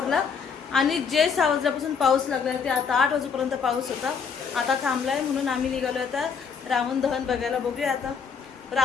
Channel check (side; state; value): right; quieter; 6.2 dB